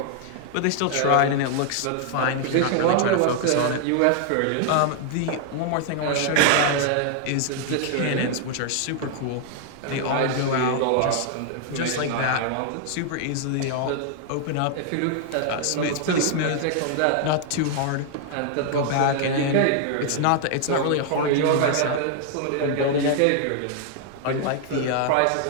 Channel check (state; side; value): different; both; correlation 0.00